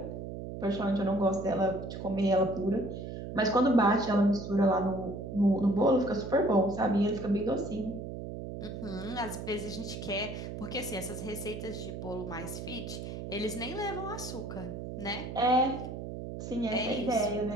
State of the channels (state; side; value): noise; right; hum, 8 dB below the sound